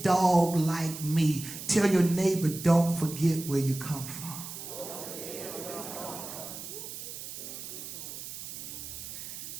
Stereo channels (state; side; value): noise; right; hiss, 9 dB below the sound